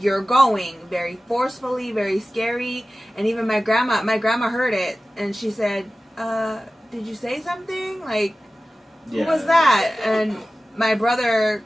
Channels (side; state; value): both; normal; correlation 0.96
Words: going, very forcefully, very scary. And even my grandma heard it, and she said, did you say something? Like, who was that? And my brother,